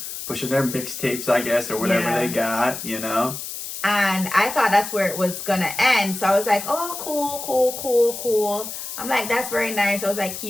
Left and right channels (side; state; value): left; noise; hiss, 8 dB below the sound